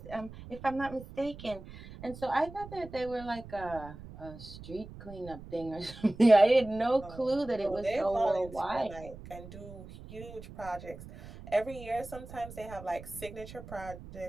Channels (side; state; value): right; noise; rumble, 15 dB below the sound